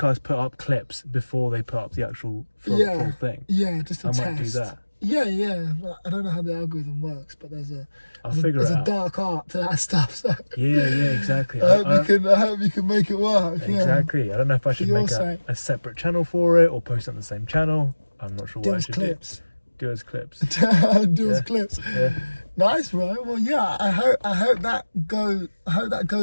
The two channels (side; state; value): both; inverted; correlation -1.00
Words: put up clips before they put up the actual full thing. Yeah, just a test. I might do that. Yeah. I don't know how the algorithm works, but there's a dark art to that stuff. So. Yeah, exactly. I hope you can make it work. Exactly. Yeah. I don't know if I should make a separate channel for it or post it on the same channel. I'm not sure what I should do. Do as clips. Clips. Yeah. Nice, bro. Well, yeah. I hope that